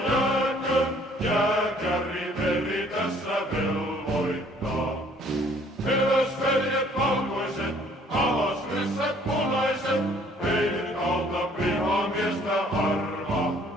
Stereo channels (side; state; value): both; normal; correlation 0.59